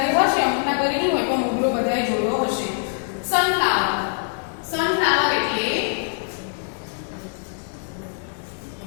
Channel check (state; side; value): silent; right; digital silence